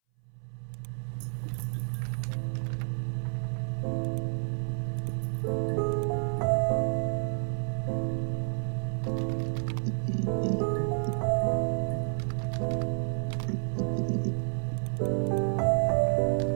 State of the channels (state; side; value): silent; left; 58 dB below the other